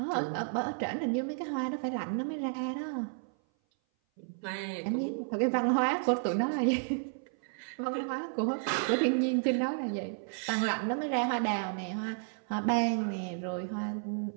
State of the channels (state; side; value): silent; left; 56 dB below the other